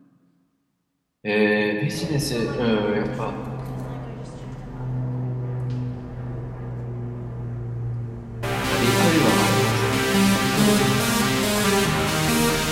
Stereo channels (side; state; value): both; identical; correlation 1.00